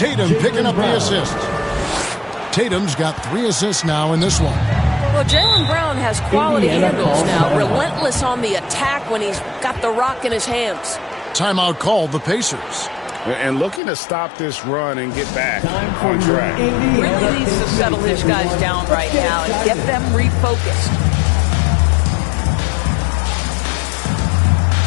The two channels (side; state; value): right; drops out; at 13.8 s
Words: picking up the assist. Tatum's got 3 assists now in this one. Well, Jaylen Brown has quality handles now. Relentless on the attack when he's got the rock in his hands. Timeout called the Pacers. And looking to stop this run and get back on track. Really needs to settle his guys down right now and get them refocused.